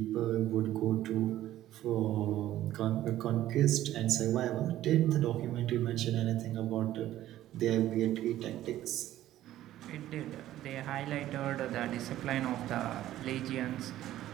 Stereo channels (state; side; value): quieter; left; 13.6 dB